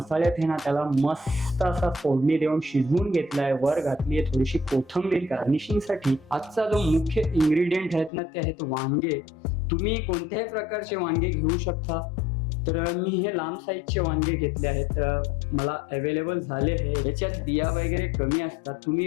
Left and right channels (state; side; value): drops out; right; at 8.1 s